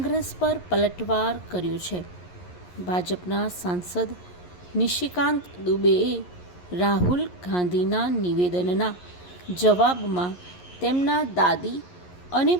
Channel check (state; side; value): late; right; 11 ms